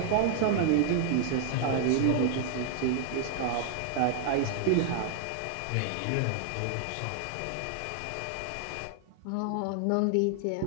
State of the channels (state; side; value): different; both; correlation 0.00